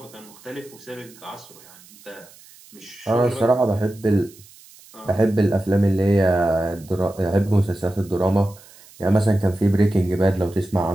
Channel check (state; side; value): noise; right; hiss, 24 dB below the sound